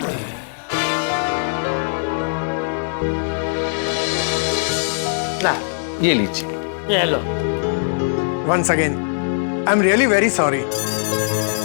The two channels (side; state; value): right; silent; digital silence